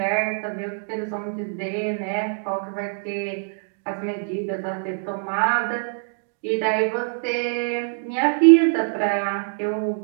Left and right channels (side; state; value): left; silent; digital silence